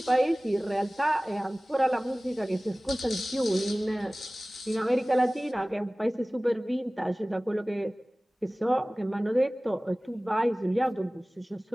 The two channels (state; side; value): normal; both; correlation 0.98